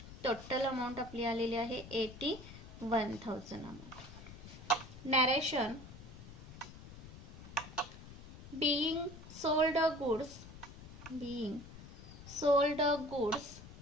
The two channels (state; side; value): noise; left; rumble, 15 dB below the sound